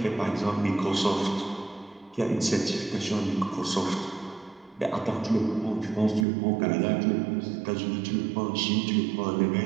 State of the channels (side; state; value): left; drops out; at 6.2 s